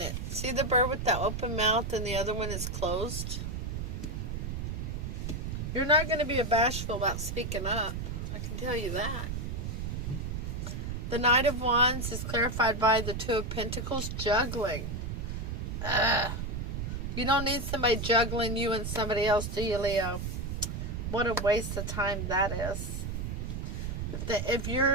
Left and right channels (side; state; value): right; noise; rumble, 4 dB below the sound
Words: See the bird with the open mouth and the other one is closed? You're not going to be bashful about speaking up. I can tell you that. The Knight of Wands is clarified by the Two of Pentacles, juggling. You don't need somebody juggling you and somebody else, do you, Leo? What a waste of time that is. If